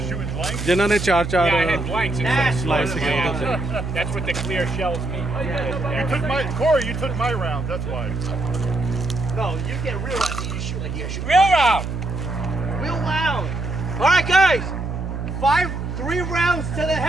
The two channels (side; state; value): right; noise; hum, 5 dB below the sound